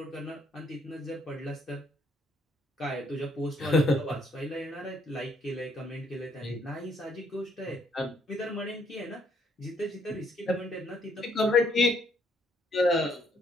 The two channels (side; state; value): both; normal; correlation 0.68